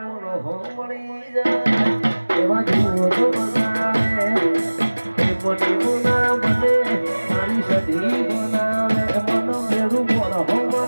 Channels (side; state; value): both; inverted; correlation -1.00